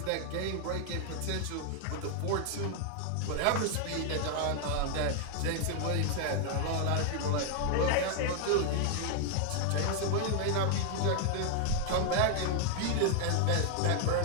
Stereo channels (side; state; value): both; different; correlation 0.00